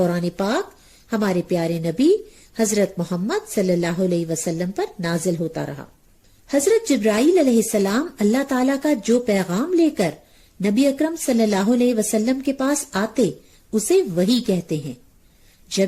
پاک ہمارے پیارے نبی حضرت محمد صلی اللہ علیہ وسلم پر نازل ہوتا رہا۔ حضرت جبرائیل علیہ السلام اللہ تعالیٰ کا جو پیغام لے کر نبی اکرم صلی اللہ علیہ وسلم کے پاس آتے اسے وحی کہتے ہیں۔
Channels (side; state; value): both; identical; correlation 1.00